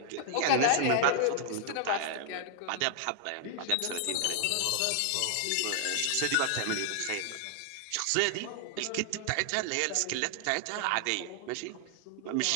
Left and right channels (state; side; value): different; both; correlation 0.00